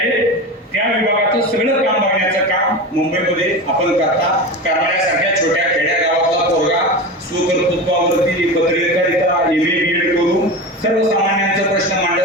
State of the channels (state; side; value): normal; both; correlation 0.26